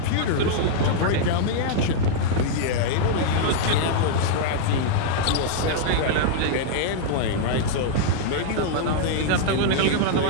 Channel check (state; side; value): different; both; correlation -0.01